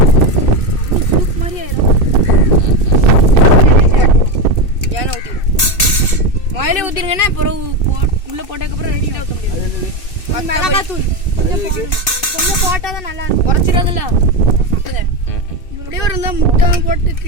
சூப் மாதிரி ஆயிரும். ஏன்னா ஊற்றிடும். மயிலே ஊற்றிருங்கன்னா அப்புறம் உள்ள போட்டதுக்கப்புறம் ரெடி ஊற்ற முடியாது. மிளகாத்தூள் கொஞ்சம் போட்டாதான் நல்லா இருக்கும். குறைச்சிடாதுல்ல. இப்படியே ஒரு இருந்தால் முட்டை போட்டு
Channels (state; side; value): late; right; 2.6 ms